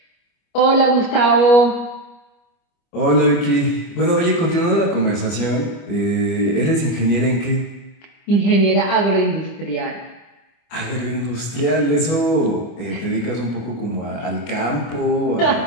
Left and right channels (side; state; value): right; late; 25 ms